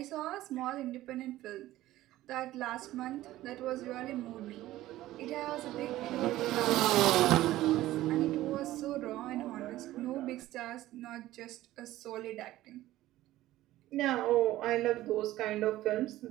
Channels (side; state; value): left; quieter; 15.5 dB